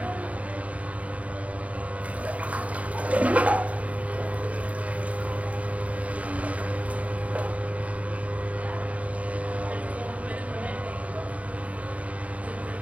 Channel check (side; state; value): left; late; 0.067 ms